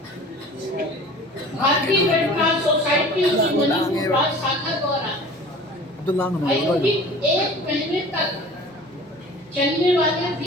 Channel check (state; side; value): normal; both; correlation 0.43